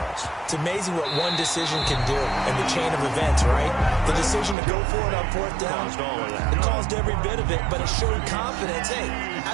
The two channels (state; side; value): drops out; left; at 4.5 s